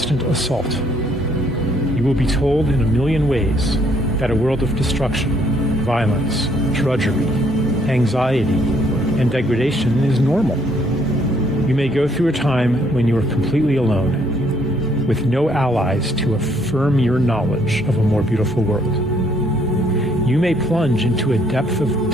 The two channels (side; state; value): both; normal; correlation 0.67